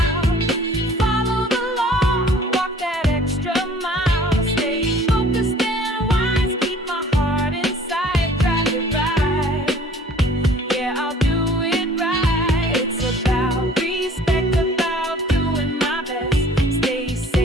Follow the law, walk that extra mile. Stay focused and wise, keep my heart inside. Drive it right, yeah, I'll do it right. It's about respect, about doing my best. Stay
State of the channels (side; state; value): both; normal; correlation 0.51